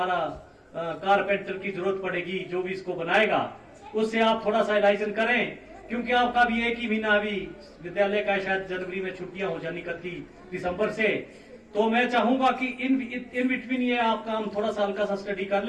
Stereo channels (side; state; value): both; identical; correlation 1.00